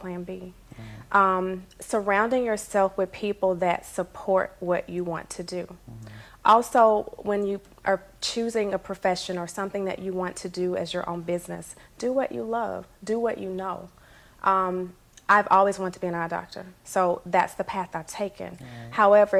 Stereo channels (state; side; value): identical; both; correlation 1.00